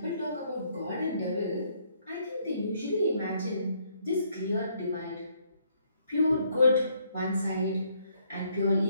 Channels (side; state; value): both; inverted; correlation -0.69